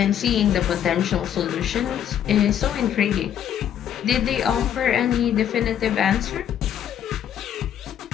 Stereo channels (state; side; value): quieter; right; 9.8 dB